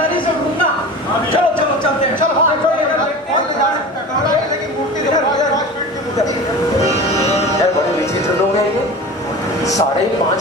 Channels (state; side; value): normal; both; correlation 0.35